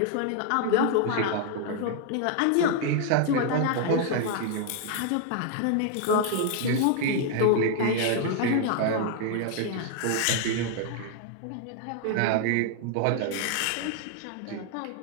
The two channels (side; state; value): both; different; correlation 0.00